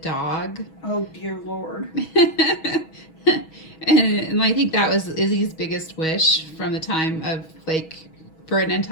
Oh, dear Lord. And I think that was Izzy's biggest wish from the time of, like, for an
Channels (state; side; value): late; right; 6.2 ms